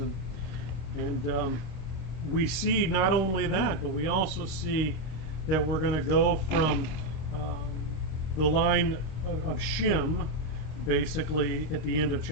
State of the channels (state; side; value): late; right; 26 ms